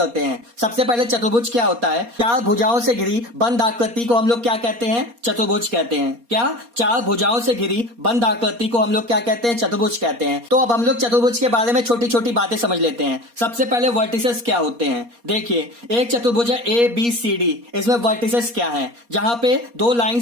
हैं। सबसे पहले चतुर्भुज क्या होता है? चार भुजाओं से घिरी बंद आकृति को हम लोग क्या कहते हैं? चतुर्भुज कहते हैं। क्या? चार भुजाओं से घिरी बंद आकृति को हम लोग क्या कहते हैं? चतुर्भुज कहते हैं। तो अब हम लोग चतुर्भुज के बारे में छोटी छोटी बातें समझ लेते हैं। सबसे पहले वर्टिसेस क्या होते हैं? देखिए, एक चतुर्भुज है ए बी सी डी, इसमें वर्टिसेस क्या है? जहां पे दो लाइन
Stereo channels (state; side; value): late; left; 4.2 ms